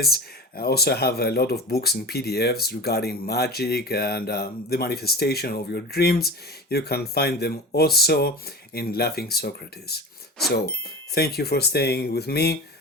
I also have a lot of books and PDFs regarding magic and the manifestation of your dreams. You can find them also in Laughing Socrates. So, thank you for staying with me.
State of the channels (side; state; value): both; normal; correlation 0.31